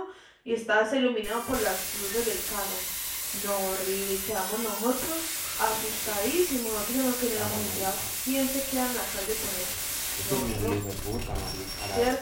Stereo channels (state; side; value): identical; both; correlation 1.00